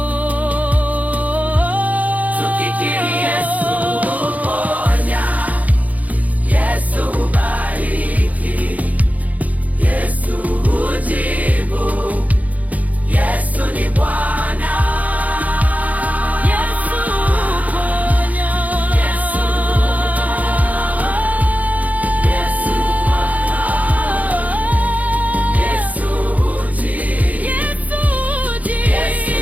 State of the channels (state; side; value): late; left; 0.074 ms